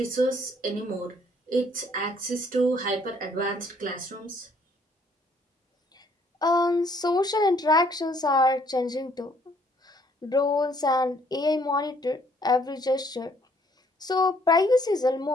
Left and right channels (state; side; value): normal; both; correlation 0.64